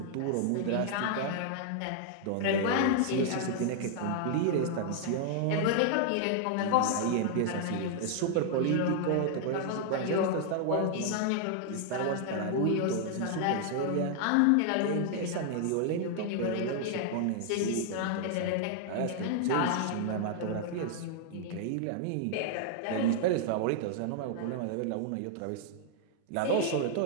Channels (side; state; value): both; different; correlation 0.00